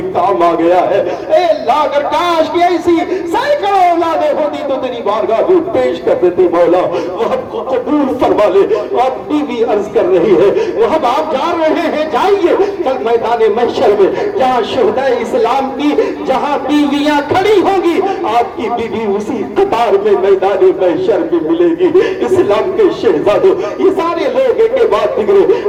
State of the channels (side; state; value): both; identical; correlation 1.00